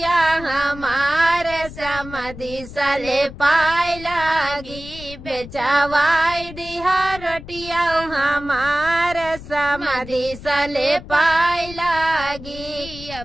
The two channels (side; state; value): left; noise; rumble, 14 dB below the sound